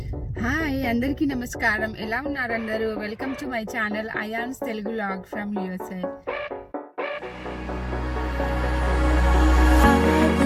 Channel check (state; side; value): identical; both; correlation 1.00